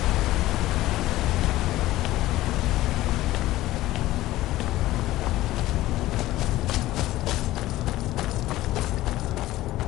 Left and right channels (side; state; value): right; quieter; 16.1 dB